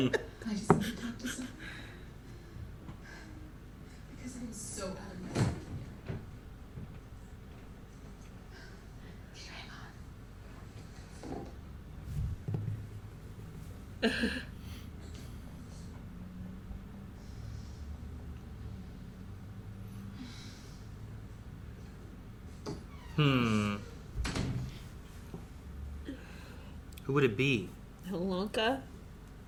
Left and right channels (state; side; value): identical; both; correlation 1.00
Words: I just need to talk to someone. Because I'm so out of my life. Who would it be? Alonka.